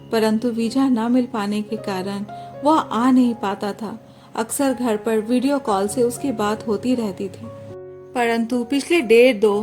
परंतु वीजा न मिल पाने के कारण वह आ नहीं पाता था। अक्सर घर पर वीडियो कॉल से उसकी बात होती रहती थी, परंतु पिछले 1.5-2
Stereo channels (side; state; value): both; identical; correlation 1.00